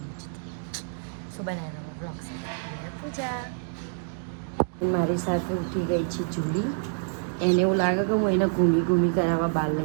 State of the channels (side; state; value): left; silent; digital silence